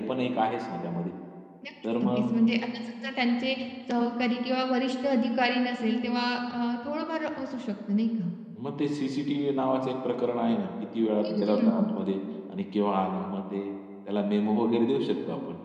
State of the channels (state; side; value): identical; both; correlation 1.00